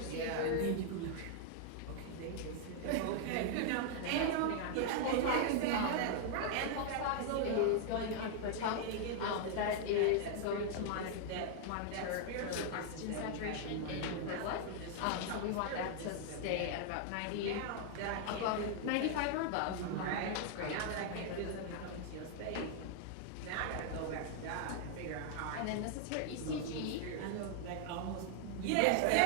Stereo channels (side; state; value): both; different; correlation 0.00